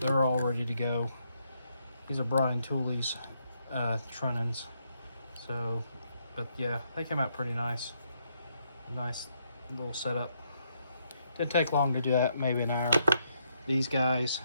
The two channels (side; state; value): both; inverted; correlation -0.76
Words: They're all ready to go. These are Brian Tooley's trunnions. So, but yeah, they came out pretty nice. Nice little setup. Didn't take long to do that, maybe an hour. These guys,